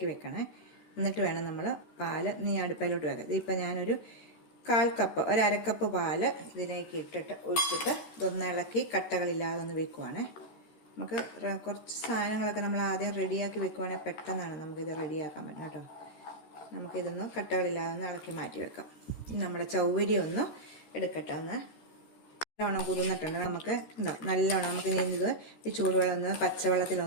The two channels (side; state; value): right; late; 13 ms